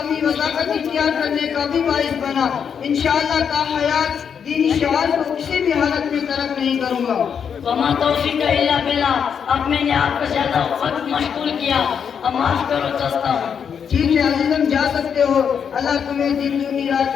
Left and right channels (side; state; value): right; quieter; 7.3 dB